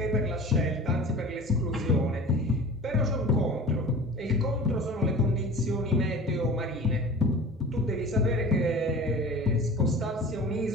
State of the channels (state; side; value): normal; both; correlation 0.38